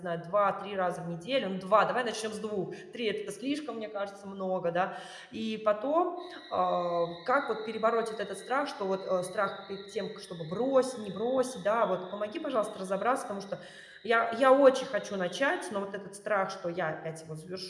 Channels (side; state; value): both; identical; correlation 1.00